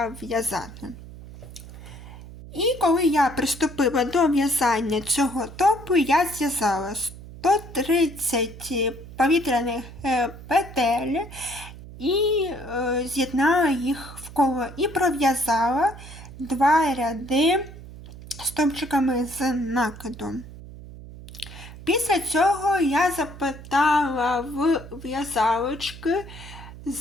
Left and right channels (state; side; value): noise; right; hum, 15 dB below the sound